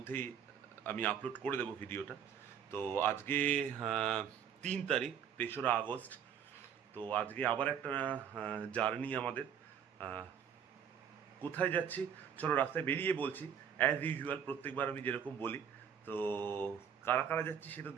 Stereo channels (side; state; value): left; quieter; 8.1 dB